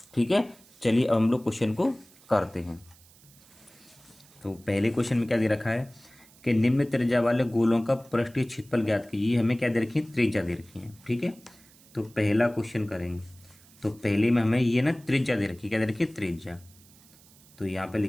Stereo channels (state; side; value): noise; right; hiss, 26 dB below the sound